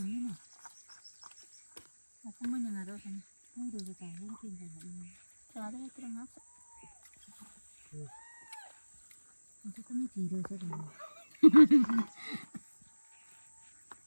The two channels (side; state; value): both; inverted; correlation -1.00